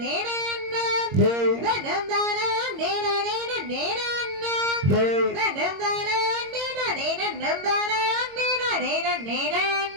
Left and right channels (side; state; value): left; late; 22 ms